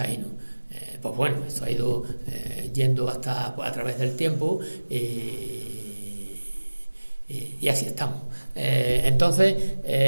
Pues bueno, eso ha ido yendo hasta a través del tiempo y así estamos. Entonces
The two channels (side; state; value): both; inverted; correlation -1.00